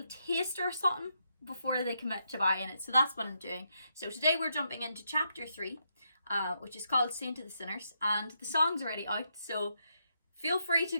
taster or something before they commit to buying it. So that's what I'm doing. So today we're jumping into chapter 3, which is called Saint to the Sinners, and the song's already out. So feel free to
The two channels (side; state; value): both; inverted; correlation -0.80